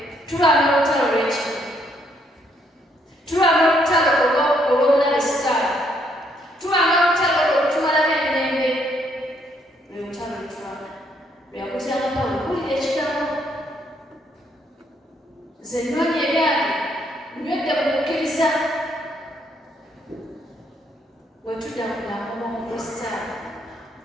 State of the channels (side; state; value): both; normal; correlation 0.71